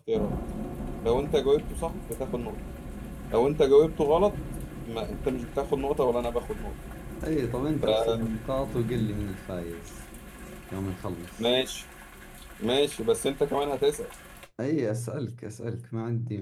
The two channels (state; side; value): identical; both; correlation 1.00